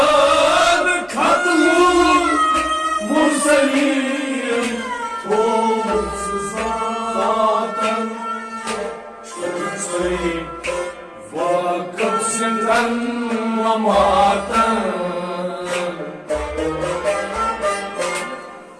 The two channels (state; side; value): identical; both; correlation 1.00